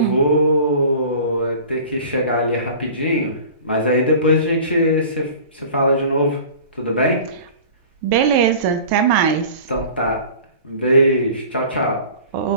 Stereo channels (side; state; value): both; inverted; correlation -0.42